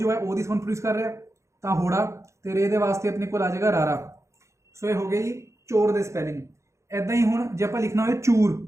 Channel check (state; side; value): late; left; 0.14 ms